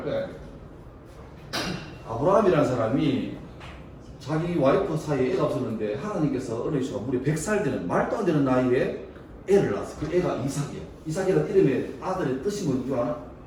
거야. 아브라함이라는 사람이 자기 와이프 사이에 애가 없었는데 하나님께서 어려우셔서 무려 100살 되는 말도 안 되는 나이에 애를 낳았어. 그 애가 이삭이야. 이삭이라는 이름의 아들의 뜻이 뭔지 아나?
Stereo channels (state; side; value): identical; both; correlation 1.00